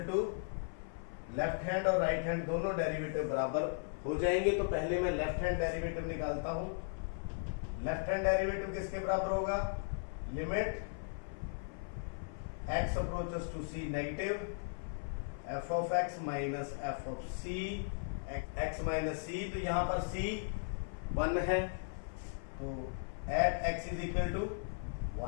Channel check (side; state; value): right; silent; 53 dB below the other